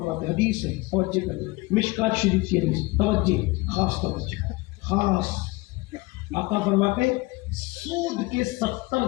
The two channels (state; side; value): quieter; right; 22.9 dB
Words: حدیث ہے، توجہ کریں، مشکات شریف کی حدیث، توجہ، خاص توجہ، خاص۔ آقا فرماتے ہیں سود کے 70